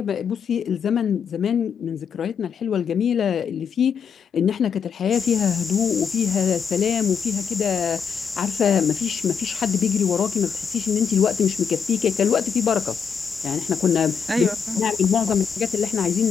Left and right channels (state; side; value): quieter; right; 6.9 dB